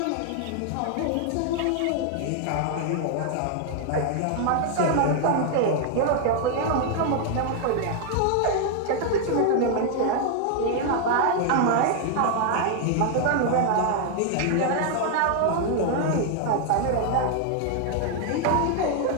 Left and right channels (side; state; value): both; different; correlation 0.00